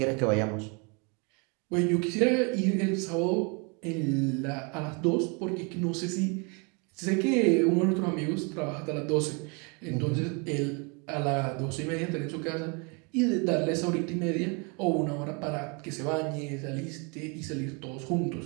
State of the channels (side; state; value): left; quieter; 32.7 dB